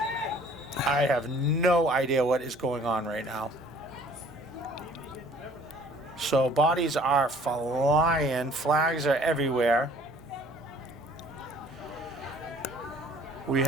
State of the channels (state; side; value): noise; right; hum, 23 dB below the sound